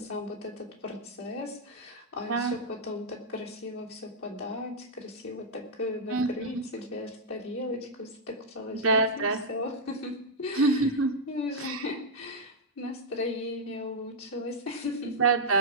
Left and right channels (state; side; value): normal; both; correlation -0.05